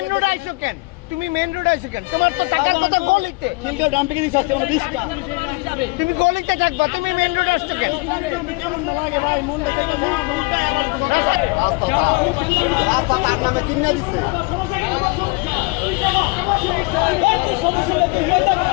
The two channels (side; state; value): right; quieter; 27.5 dB